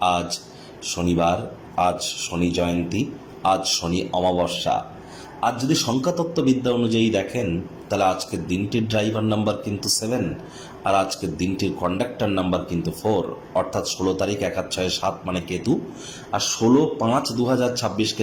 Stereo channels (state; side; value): identical; both; correlation 1.00